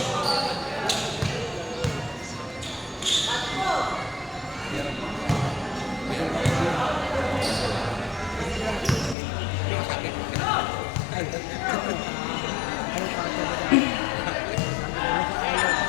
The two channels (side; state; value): right; drops out; at 9.2 s